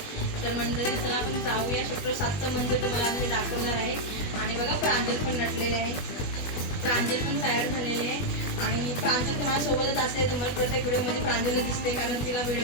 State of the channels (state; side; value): late; right; 20 ms